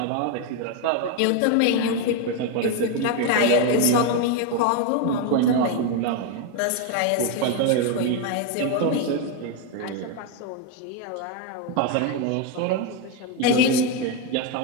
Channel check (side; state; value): both; different; correlation 0.02